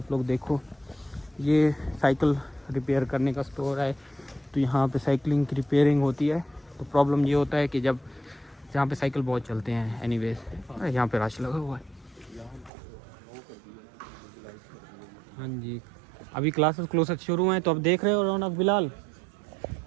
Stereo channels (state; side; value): drops out; left; at 12.7 s